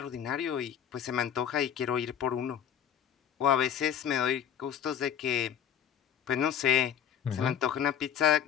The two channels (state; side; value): quieter; right; 9.3 dB